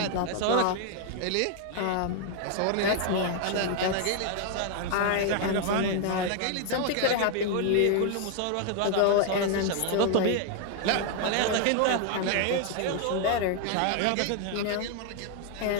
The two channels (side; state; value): both; different; correlation 0.00